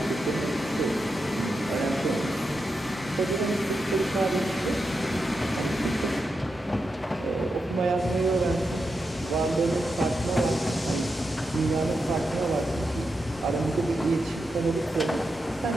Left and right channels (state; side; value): normal; both; correlation 0.87